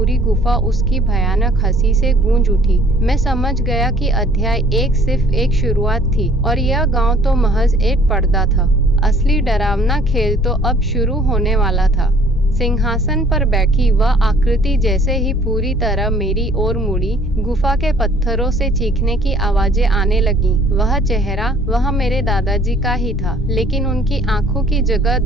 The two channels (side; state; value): both; normal; correlation 0.56